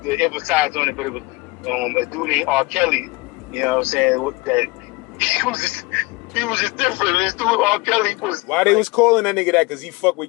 to emphasize on it, but it was a dude named R. Kelly. You know what I'm saying? That he was just different. This dude R. Kelly was. Why they was calling that nigga that? Cause he fuck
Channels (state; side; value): quieter; right; 24.5 dB